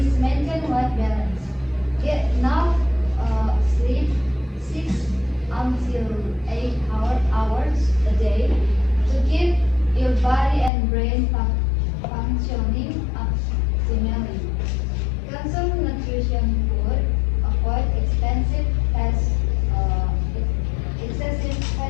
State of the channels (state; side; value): drops out; right; at 10.7 s